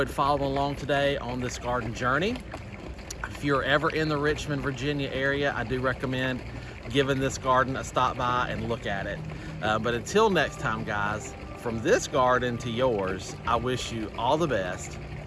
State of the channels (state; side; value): identical; both; correlation 1.00